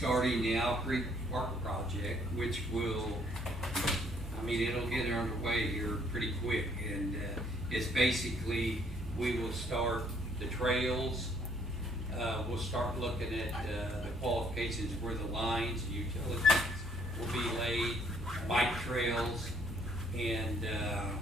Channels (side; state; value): both; normal; correlation 0.65